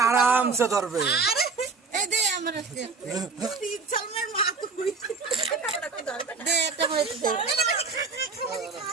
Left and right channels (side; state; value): left; quieter; 4.5 dB